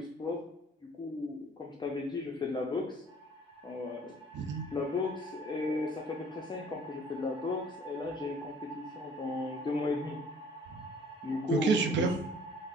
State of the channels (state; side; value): normal; both; correlation 0.54